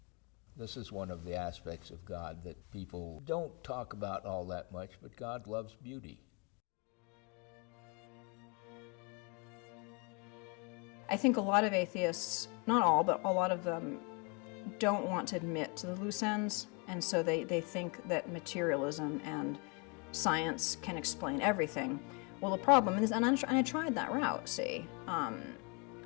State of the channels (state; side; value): quieter; right; 32.6 dB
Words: This is one of the aspects of God that people don't talk about all that much, but God loves beauty. I think a lot of atheists, not all, but a lot of them, don't want to admit to the loose ends, and so they think that materialism and science can explain everything. Well, the problem is, and I tried that route, see,